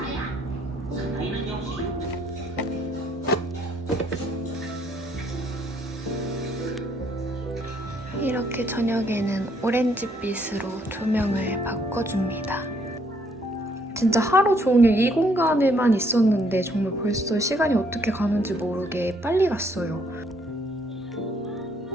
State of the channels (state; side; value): normal; both; correlation 0.67